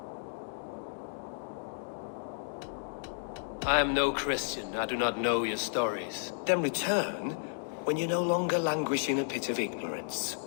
I am no Christian. I do not know your stories. Then return when you no longer languish in a pit of ignorance.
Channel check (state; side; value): silent; right; digital silence